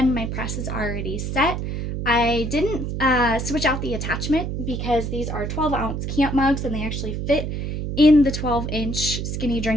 my press is already set. I didn't switch out the attachment because these are 12-ounce camp mugs and they actually fit in the 12-inch skinny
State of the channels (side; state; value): right; noise; hum, 3 dB below the sound